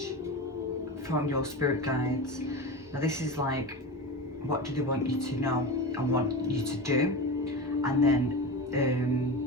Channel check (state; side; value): normal; both; correlation 0.25